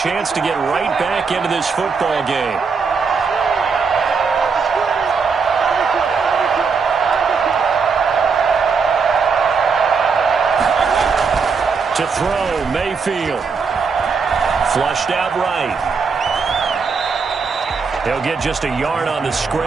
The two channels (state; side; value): quieter; left; 5.2 dB